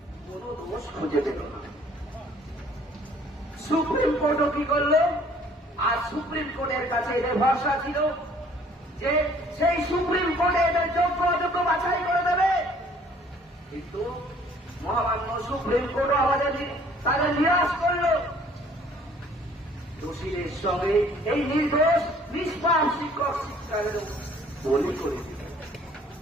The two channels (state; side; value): normal; both; correlation 0.57